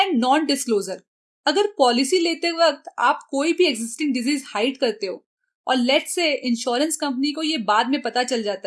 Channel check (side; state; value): both; identical; correlation 1.00